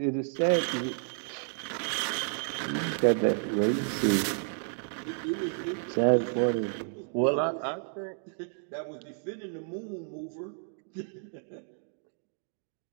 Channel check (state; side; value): silent; left; 57 dB below the other